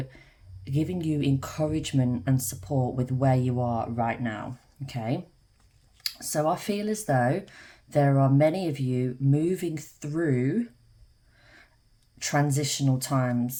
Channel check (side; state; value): both; identical; correlation 1.00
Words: giving you encouragement and support with where you are right now, okay? So I feel as though there are many of you moving through transitional